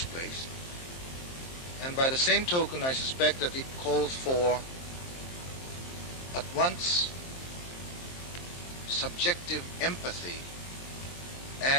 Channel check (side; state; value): right; late; 23 ms